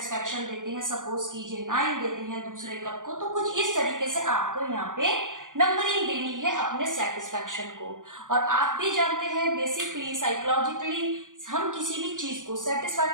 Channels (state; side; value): late; left; 0.88 ms